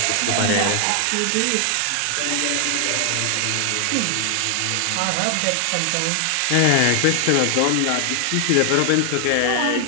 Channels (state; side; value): different; both; correlation 0.00